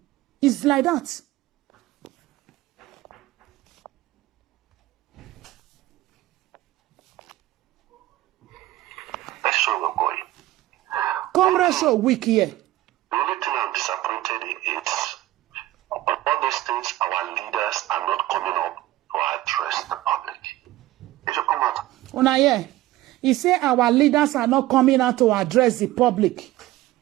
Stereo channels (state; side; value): quieter; left; 16.2 dB